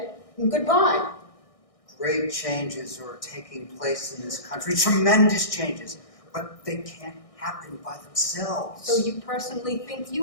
goodbye. Great changes are taking place in this country, tremendous changes, but they can't happen by themselves. So you personally think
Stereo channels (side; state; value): right; late; 1.6 ms